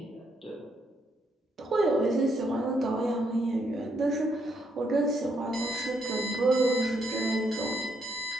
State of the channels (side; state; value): both; normal; correlation 0.75